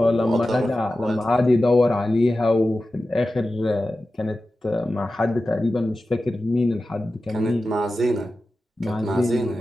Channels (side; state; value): both; normal; correlation 0.94